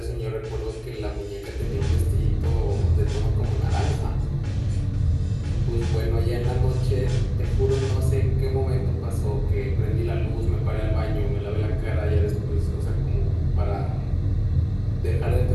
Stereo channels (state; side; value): identical; both; correlation 1.00